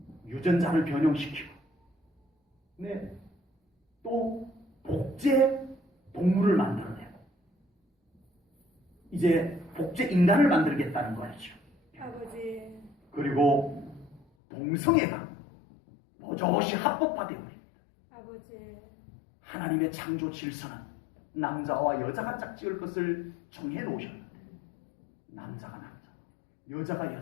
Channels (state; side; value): drops out; right; at 14.2 s